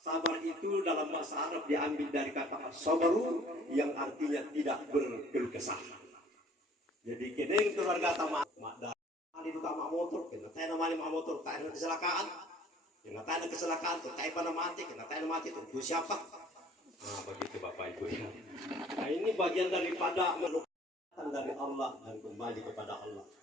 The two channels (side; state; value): both; normal; correlation 0.54